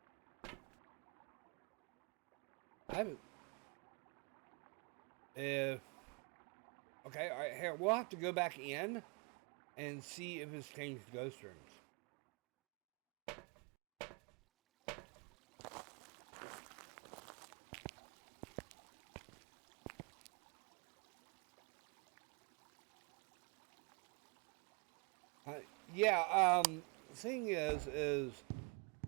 I haven't. If okay, all right, here we'll have to go back in and see if it's changed ghost rooms. Yeah. Thing is, you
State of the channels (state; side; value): quieter; left; 33.6 dB